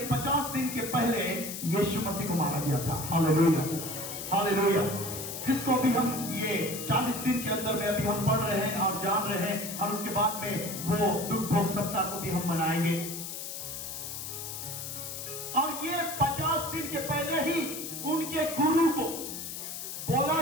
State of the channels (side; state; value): left; noise; hiss, 7 dB below the sound